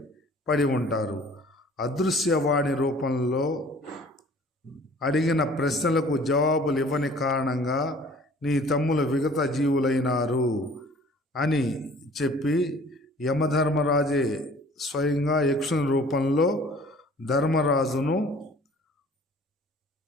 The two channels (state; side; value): normal; both; correlation 0.51